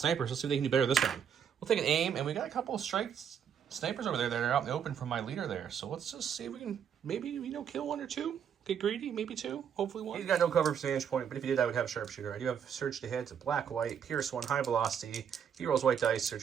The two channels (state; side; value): quieter; left; 8.1 dB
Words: Let's see if they can do better this time. We'll take an aim, and we got a couple of snipers over there that are out in the open from my leader there. So let's just see if we can maybe, kill 1 or 2. Get greedy, maybe 2, hopefully 1. He's got no cover for vantage point, but if he did, I would have sharpshooter. I do have surge to hit. It's a black, white, pierce 1, high velocity. He rolls white dice,